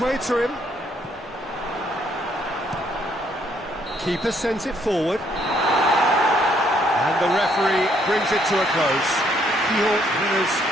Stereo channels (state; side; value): normal; both; correlation 0.69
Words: way to him. Keeper sends it forward. And the referee brings it to a close. GIJÓN winners